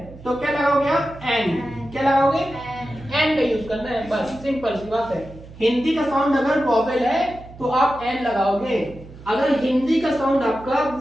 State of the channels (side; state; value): right; noise; hum, 18 dB below the sound